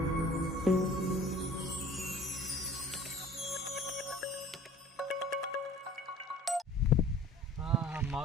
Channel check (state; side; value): normal; both; correlation 0.48